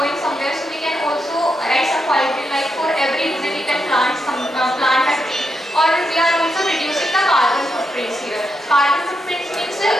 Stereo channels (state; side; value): normal; both; correlation 0.83